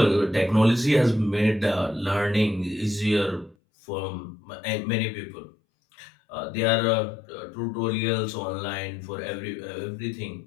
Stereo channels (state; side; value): drops out; right; at 3.6 s